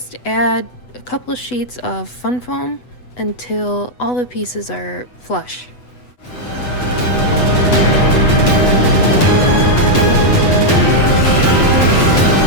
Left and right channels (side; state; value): right; late; 8.0 ms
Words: add a couple of sheets of fun foam until all the pieces are flush.